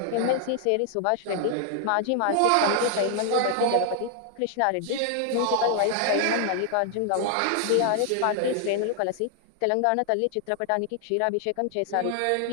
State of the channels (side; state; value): both; different; correlation 0.00